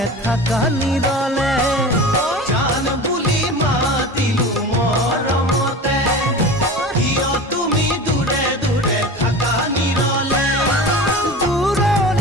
থাকা নিৰলে। জান বুলি মাতিলো মৰমতে, কিয় তুমি দূৰে দূৰে থাকা নিৰলে।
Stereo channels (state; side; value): normal; both; correlation 0.33